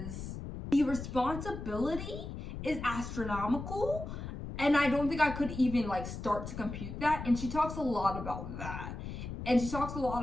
the responsibility is astronomical. And I don't think I could even like start to compute that. And she talks a lot about that. And she talks a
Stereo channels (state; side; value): noise; left; rumble, 8 dB below the sound